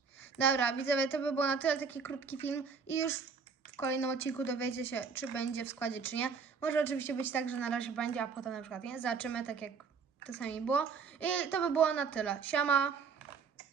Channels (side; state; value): left; quieter; 5.6 dB